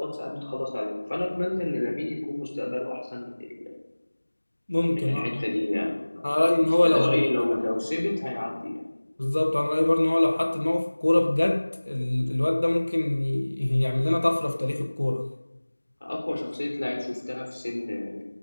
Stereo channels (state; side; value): inverted; both; correlation -1.00